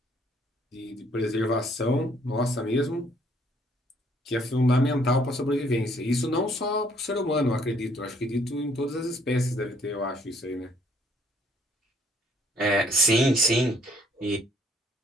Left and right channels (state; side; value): normal; both; correlation 0.64